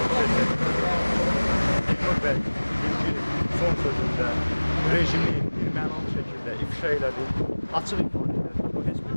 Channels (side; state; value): both; inverted; correlation -1.00